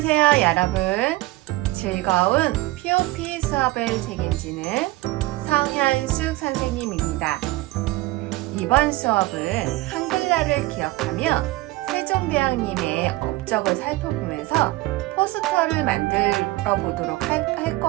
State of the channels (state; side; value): quieter; left; 19.4 dB